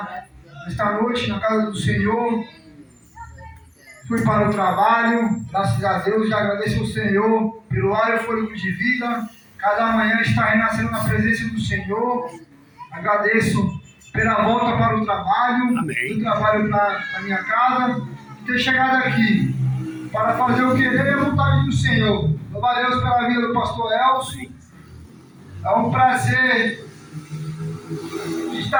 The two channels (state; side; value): identical; both; correlation 1.00